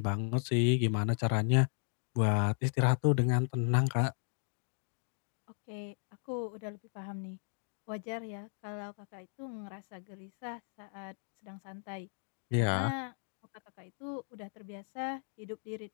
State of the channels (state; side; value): silent; right; digital silence